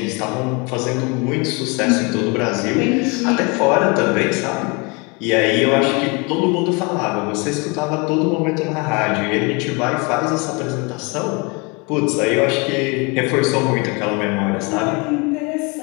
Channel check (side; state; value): right; quieter; 29.6 dB